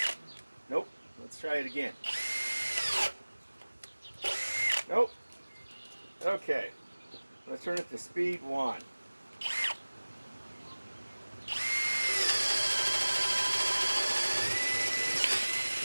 Nope. Let's try it again. Nope. Okay. Let's turn it to speed 1.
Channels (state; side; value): inverted; both; correlation -1.00